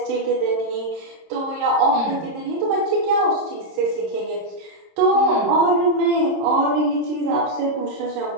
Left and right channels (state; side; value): late; left; 26 ms